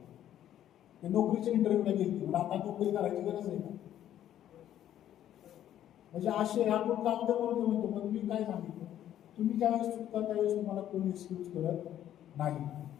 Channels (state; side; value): quieter; right; 11.4 dB